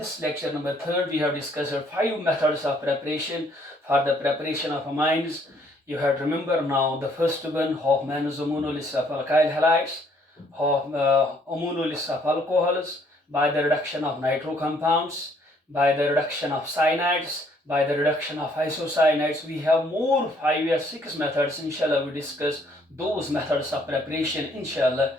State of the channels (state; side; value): normal; both; correlation 0.65